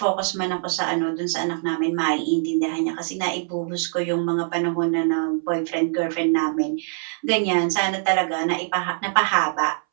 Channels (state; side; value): silent; left; 62 dB below the other